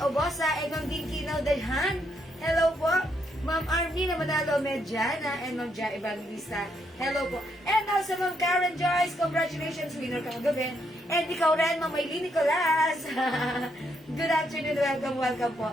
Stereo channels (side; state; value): both; normal; correlation 0.76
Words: Obosa, Egon Ginkinaw Dalhan. Hello po. Ma'am Armina Manalo Medjana and Ma'am Ja Evangelista. Hello po. And also Ma'am Karen Joyce, congratulations, winner ka kagabi. And ikaw rin, Ma'am Maylene Nicolas. Good afternoon, welcome po.